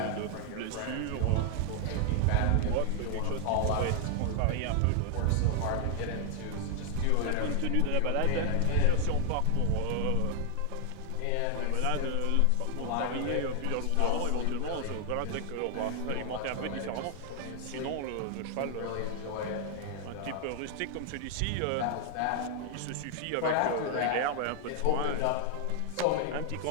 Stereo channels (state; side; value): different; both; correlation 0.00